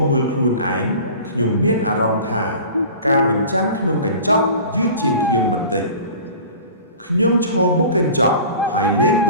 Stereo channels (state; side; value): inverted; both; correlation -0.41